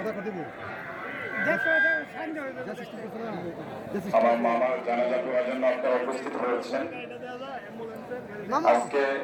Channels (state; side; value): identical; both; correlation 1.00